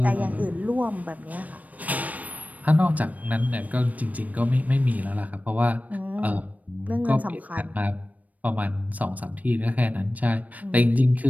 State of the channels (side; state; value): left; late; 0.073 ms